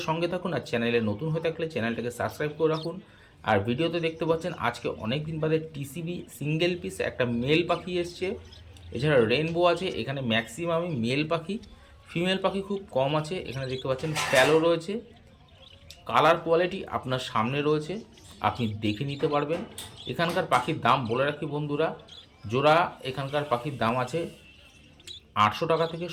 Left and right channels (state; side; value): identical; both; correlation 1.00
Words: সঙ্গে থাকুন, আর চ্যানেলে নতুন হয়ে থাকলে চ্যানেলটাকে সাবস্ক্রাইব করে রাখুন। আর ভিডিওতে দেখতে পাচ্ছেন আজকে অনেক দিন বাদে টিসিবি সিঙ্গেল পিস একটা মেল পাখি এসছে, এছাড়া রেইনবো আছে। এখানে ম্যাক্সিমামই মেল পাখি, ফিমেল পাখি খুব কম আছে। এখানে দেখতে পাচ্ছেন প্যালো রয়েছে, কালার কোয়ালিটি আপনার সামনে রয়েছে, আপনি দেখে নিতে পারবেন। এখানকার পাখির দাম বলে রাখি বন্ধুরা, জোড়া এখানকার পাখির দাম আছে 800 টাকা থেকে